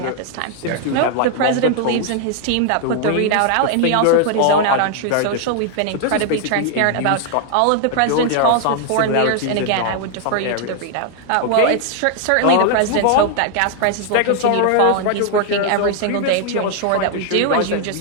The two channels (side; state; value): both; different; correlation 0.00